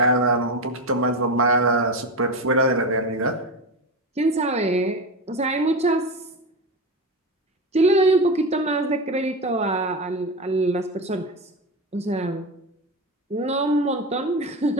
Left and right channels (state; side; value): normal; both; correlation 0.20